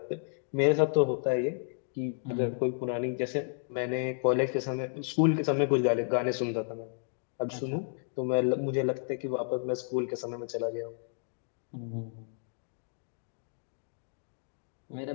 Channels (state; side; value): silent; right; digital silence